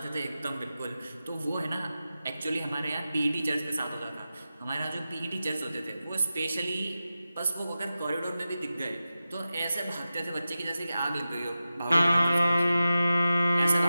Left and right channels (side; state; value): both; inverted; correlation -0.93